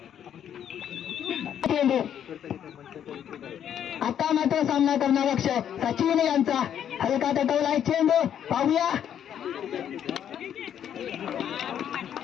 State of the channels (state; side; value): quieter; right; 9.5 dB